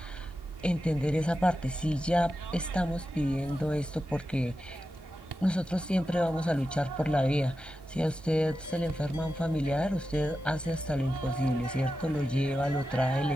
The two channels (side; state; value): both; normal; correlation 0.91